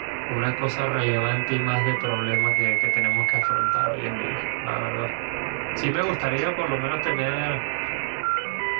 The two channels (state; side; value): silent; left; digital silence